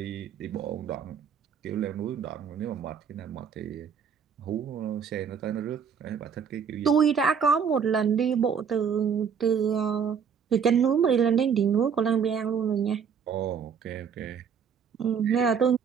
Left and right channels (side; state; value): left; quieter; 6.9 dB